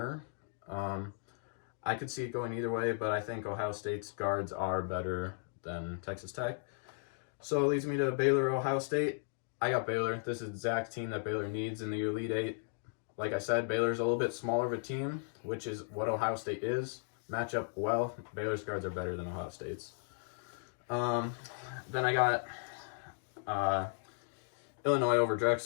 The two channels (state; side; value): silent; right; digital silence